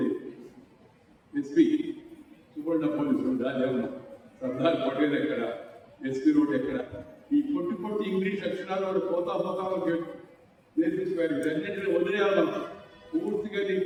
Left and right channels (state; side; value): identical; both; correlation 1.00